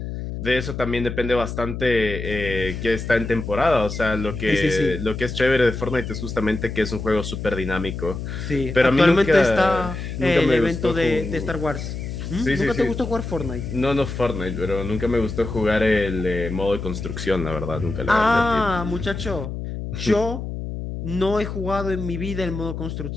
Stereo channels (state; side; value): noise; left; hum, 6 dB below the sound